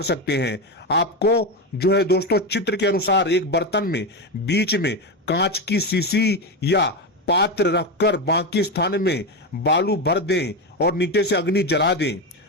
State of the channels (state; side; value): normal; both; correlation 0.14